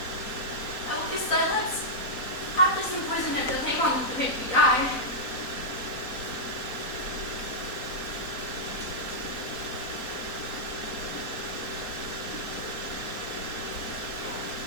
I will kiss thy lips. Haply some poison that doth hang on to make me die.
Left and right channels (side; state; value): right; late; 4.0 ms